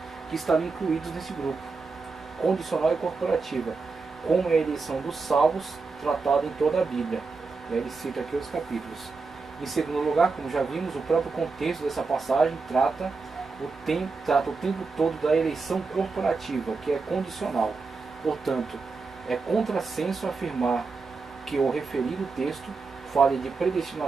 que estariam incluídos nesse grupo. Condicional e corporativa, como é a eleição dos salvos, tratada em toda a Bíblia. Ele cita aqui os capítulos. Em segundo lugar, como já vimos, o próprio contexto dessa passagem trata o tempo todo da eleição corporativa, que é condicional. Portanto, é contrassenso afirmar que o referido texto fale de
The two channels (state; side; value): quieter; left; 4.3 dB